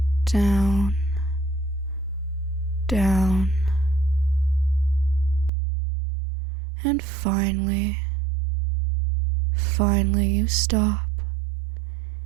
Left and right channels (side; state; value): left; drops out; at 5.5 s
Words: down, down. And finally you stop